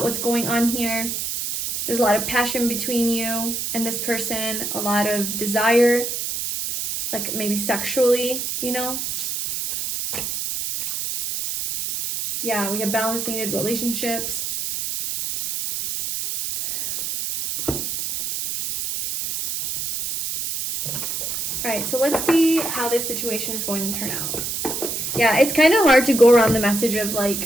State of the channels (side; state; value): right; noise; hiss, 3 dB below the sound